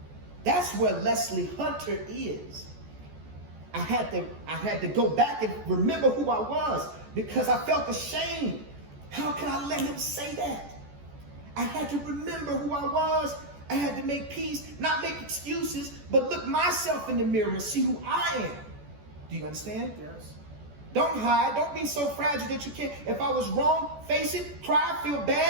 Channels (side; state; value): left; late; 14 ms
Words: that's where Leslie Hunter is. I had to go back and remember who I was because I felt ashamed. How could I let him say that? I had to remember who I was. I had to make peace, not make excuses, but look myself in the mirror and see who I am. Do you understand? Yes. Don't hide. Don't be so fragile that you can't. If I was wrong, face it, cry, feel